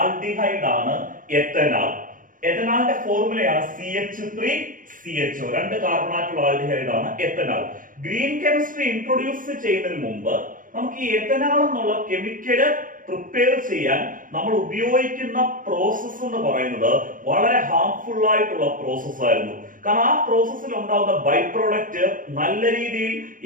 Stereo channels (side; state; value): left; late; 0.39 ms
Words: ആണ് എത്തനാൽ. എത്തനാളിന്റെ ഫോർമുലയാണ് CH3CHO. 2 കാർബണാറ്റുള്ള ആൽഡിഹൈഡ് ആണ് എത്തനാൽ. ഗ്രീൻ കെമിസ്ട്രി ഇൻട്രൊഡ്യൂസ് ചെയ്യുന്നതിന് മുമ്പ് നമുക്ക് ഈ എത്തനാൽ എന്നുള്ള കെമിക്കല് പ്രിപ്പയർ ചെയ്യാൻ നമ്മൾ ഉപയോഗിക്കുന്ന പ്രോസസ് എന്ന് പറയുന്നത് വളരെ ഹാർംഫുൾ ആയിട്ടുള്ള പ്രോസസ് ആയിരുന്നു. കാരണം ആ പ്രോസസ്സിൽ ഉണ്ടാകുന്ന ബൈ പ്രോഡക്റ്റ് നല്ല രീതിയിൽ